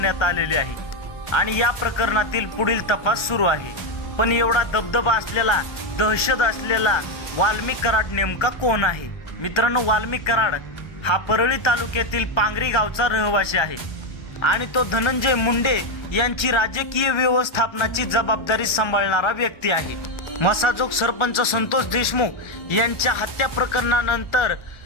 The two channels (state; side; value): late; right; 1.3 ms